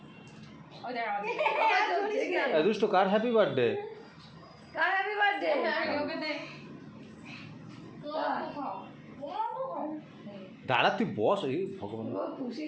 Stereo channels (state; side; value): identical; both; correlation 1.00